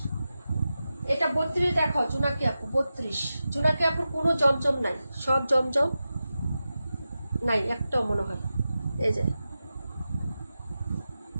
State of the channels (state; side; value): inverted; both; correlation -0.92